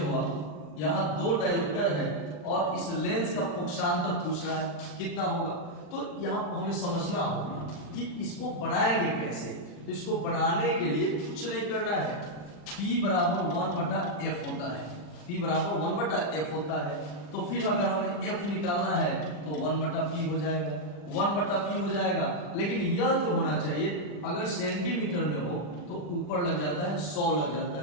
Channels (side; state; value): right; late; 40 ms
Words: आप, यहां दो डायोप्टर है और इस लेंस का फोकसांतर पूछ रहा है कितना होगा। तो यहां हमें समझना होगा कि इसको बनाएंगे कैसे। तो इसको बनाने के लिए कुछ नहीं करना है, P बराबर 1/f होता है, P बराबर 1/f होता है। तो फिर अगर हमें f निकालना है तो 1/p हो जाएगा, 1/p हो जाएगा। लेकिन यह जो होना चाहिए अगर सेंटीमीटर में हो तो ऊपर लग जाता है 100 लग जाता